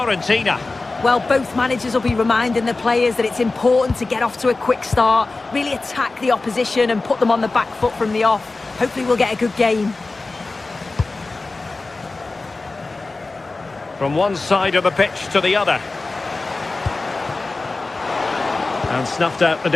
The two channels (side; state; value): right; quieter; 3.5 dB